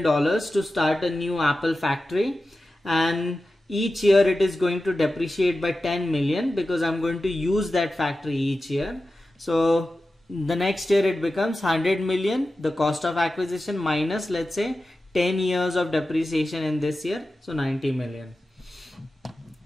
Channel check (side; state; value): both; normal; correlation 0.93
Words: to start a new Apple factory, and each year it is going to depreciate by 10 million because I'm going to use that factory each year. So the next year it becomes 100 million, the cost of acquisition, minus let's say 10 years of depreciation in this year, so 90 million.